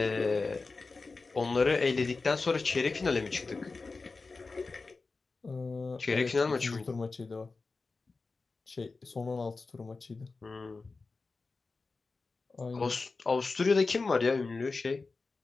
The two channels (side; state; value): right; quieter; 4.0 dB